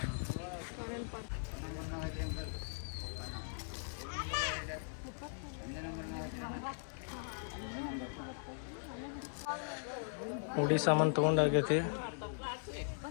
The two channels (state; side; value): silent; right; digital silence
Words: ಹುಡಿ ಸಾಮಾನು ತೊಗೊಂಡಾಗೈತಿ.